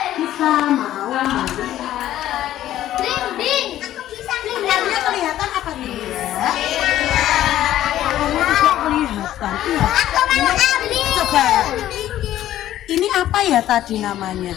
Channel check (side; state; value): right; quieter; 12.9 dB